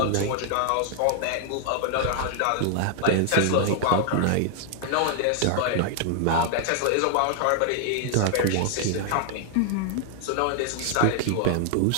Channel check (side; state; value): both; different; correlation 0.00